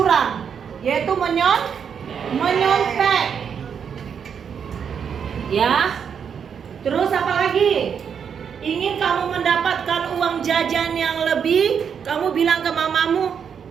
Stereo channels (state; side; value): quieter; left; 7.3 dB